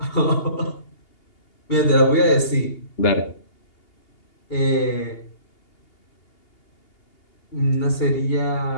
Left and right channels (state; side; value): late; right; 2.8 ms